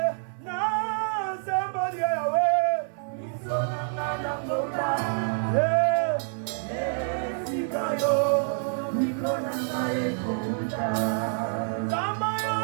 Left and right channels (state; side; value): silent; left; digital silence